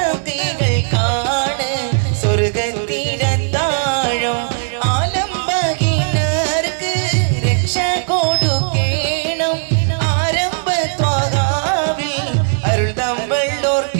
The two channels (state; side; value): silent; left; 68 dB below the other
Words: സ്വർഗത്തിലെ താഴം. ആലംബഹീനർക്ക് രക്ഷ കൊടുക്കേണം, ആരംഭ ത്വാഗാവിൽ അരുൾ